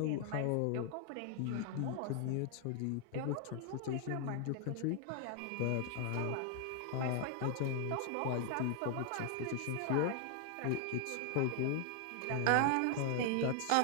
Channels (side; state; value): both; different; correlation 0.00